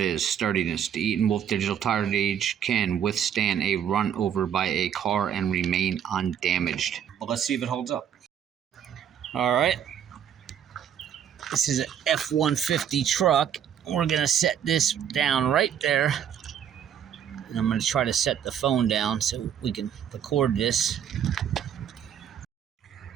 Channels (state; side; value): quieter; left; 9.0 dB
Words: is, sturdiness. The ETENWOLF Digital Tire Gauge can withstand a run over by a car and remain undamaged. Well, let's see if it holds up. All right. This is an F-150 truck. We're going to set this down right there. And I'm going to try to set the phone down so we can record this.